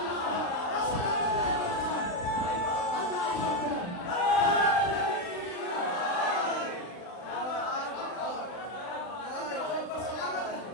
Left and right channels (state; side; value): late; right; 39 ms